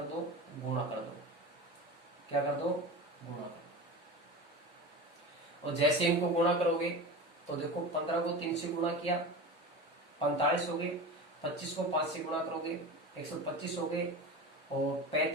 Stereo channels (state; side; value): normal; both; correlation 0.29